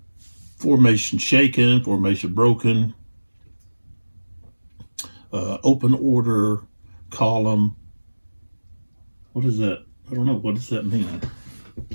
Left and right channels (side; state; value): both; inverted; correlation -1.00